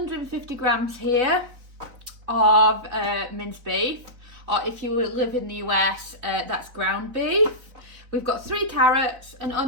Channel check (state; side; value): late; left; 4.0 ms